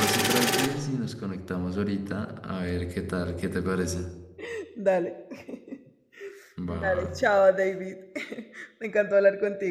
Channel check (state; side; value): identical; both; correlation 1.00